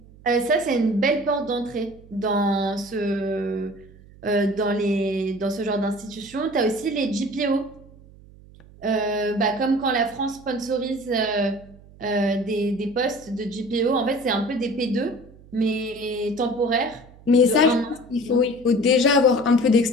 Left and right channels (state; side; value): noise; right; hum, 23 dB below the sound